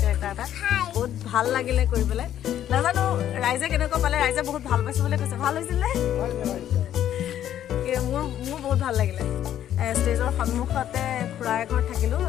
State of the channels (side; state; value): right; quieter; 11.1 dB